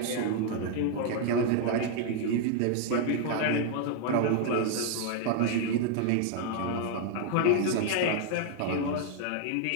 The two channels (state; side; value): different; both; correlation 0.00